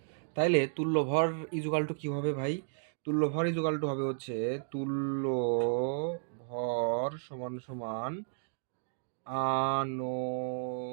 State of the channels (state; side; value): silent; left; digital silence